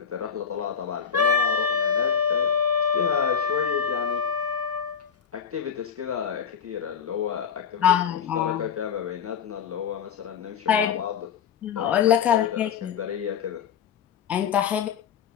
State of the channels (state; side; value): quieter; right; 7.5 dB